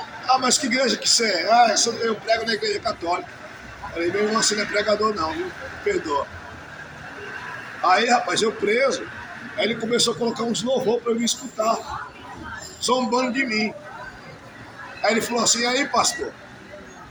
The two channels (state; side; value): identical; both; correlation 1.00